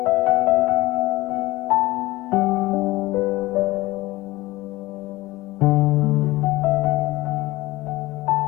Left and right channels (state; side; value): quieter; right; 19.3 dB